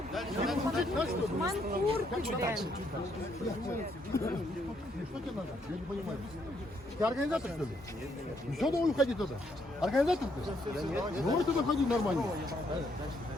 Манкурты, блин. Что тебе надо? Я не понимаю. Ты организатор, что ли? Ну что давай уходи туда? Организатор ты? Давай туда ходи нормально.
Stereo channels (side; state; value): both; normal; correlation 0.73